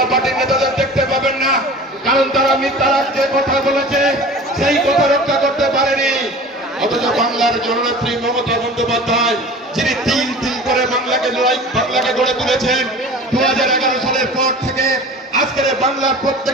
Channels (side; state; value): both; normal; correlation 0.39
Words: পার্টির নেতাদের দেখতে পাবেন না, কারণ তারা মিথ্যা রাজ্যে কথা বলেছে, সেই কথা রক্ষা করতে পারেনি। অথচ বাংলার জননেত্রী মমতা বন্দ্যোপাধ্যায়, যিনি তিল তিল করে বাংলাকে গড়ে তুলেছেন, 2011 সালের পর থেকে আজকের বাংলার